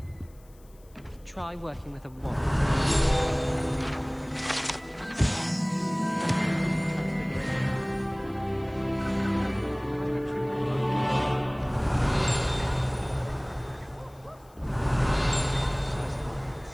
Try working with a wand.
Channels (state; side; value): noise; left; hiss, 30 dB below the sound